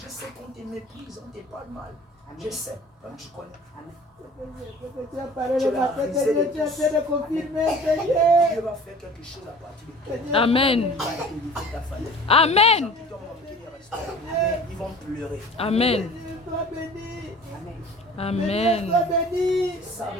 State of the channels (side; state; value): both; normal; correlation 0.44